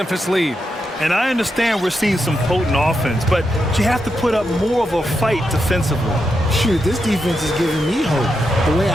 lead. And I understand we're seeing some potent offense, but you have to put up more of a fight defensively. Shoot, this defense is giving me hope. The way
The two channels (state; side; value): normal; both; correlation 0.85